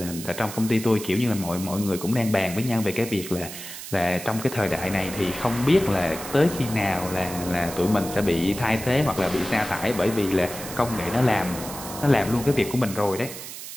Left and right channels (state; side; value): noise; right; hiss, 11 dB below the sound